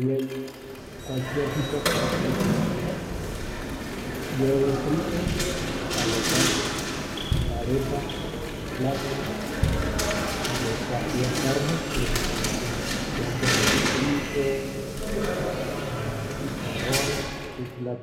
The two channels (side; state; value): both; identical; correlation 1.00